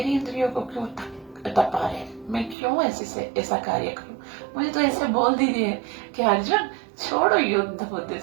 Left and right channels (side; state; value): left; drops out; at 2.6 s